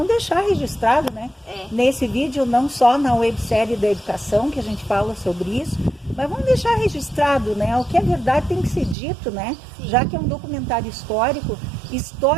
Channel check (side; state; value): left; drops out; at 9.0 s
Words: deixar registrado, né? É. Nesse vídeo, não só na websérie da educação, que a gente fala sobre isso, mas vamos deixar registrado, né? O que é verdade tem que ser dito, né? Sim. Já que é um documentário histórico,